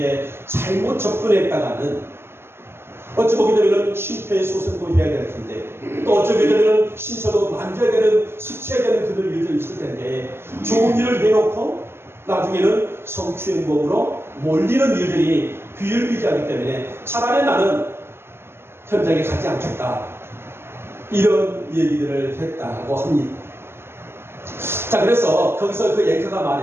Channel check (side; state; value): left; late; 0.12 ms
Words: 잘못 접근했다가는 어찌 보게 되면 심폐소생도 해야 될 텐데 또 어찌 보게 되면 신체도 만져야 되는, 스쳐야 되는 그들 일도 있을 텐데 좋은 일을 해놓고 나중에는 성추행범으로 몰리는 일들이 비일비재하기 때문에 차라리 나는 현장에 가지 않겠다, 이런 얘기들을 했다고 합니다. 자, 그래서 거기서 그 앵커가